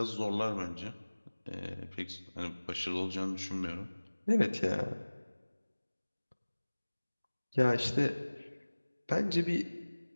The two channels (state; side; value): inverted; both; correlation -1.00